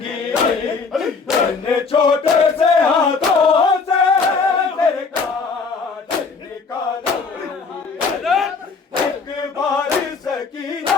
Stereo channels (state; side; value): quieter; right; 4.8 dB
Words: छोटे से हाथों से मेरे काट निकालूंगी। एक बार